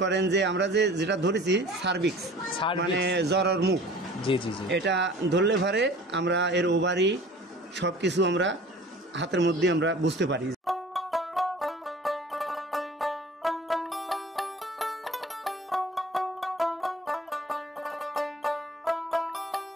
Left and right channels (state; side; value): normal; both; correlation 0.45